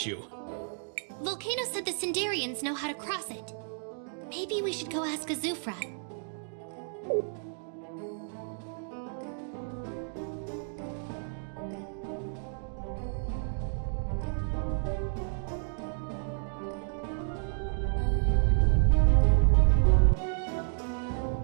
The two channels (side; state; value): left; silent; 57 dB below the other